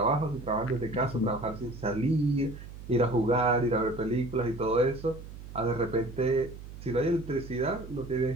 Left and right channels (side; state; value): right; noise; hum, 13 dB below the sound